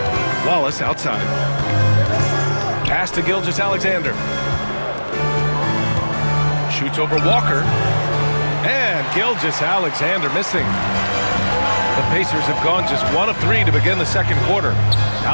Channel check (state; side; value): inverted; both; correlation -1.00